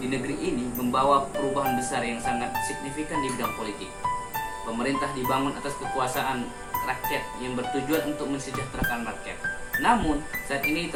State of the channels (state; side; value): identical; both; correlation 1.00